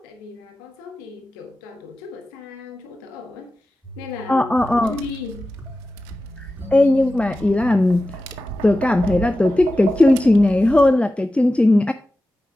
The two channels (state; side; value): normal; both; correlation 0.94